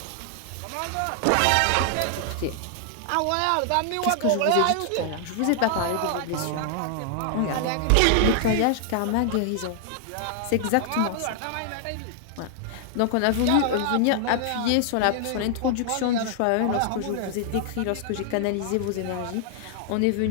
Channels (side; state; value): both; different; correlation 0.00